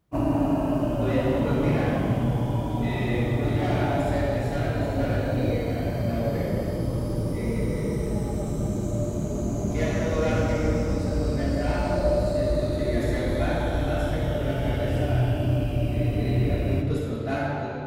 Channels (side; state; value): both; identical; correlation 1.00